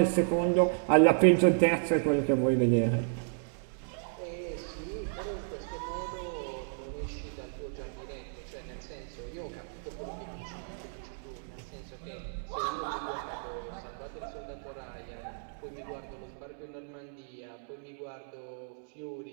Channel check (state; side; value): silent; left; digital silence